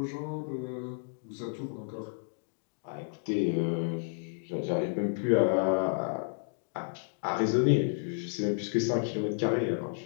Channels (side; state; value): right; silent; digital silence